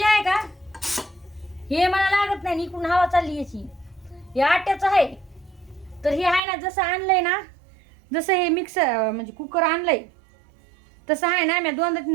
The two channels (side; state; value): left; drops out; at 6.4 s